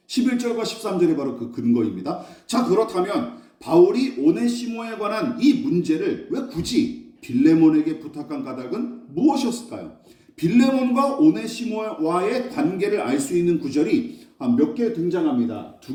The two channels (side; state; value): both; identical; correlation 1.00